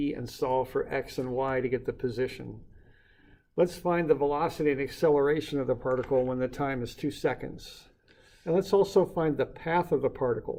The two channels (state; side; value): identical; both; correlation 1.00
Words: and solve for x and y to get the position. Let's find the velocity and acceleration of the particle when the time is 2 seconds. And let's also find the path of the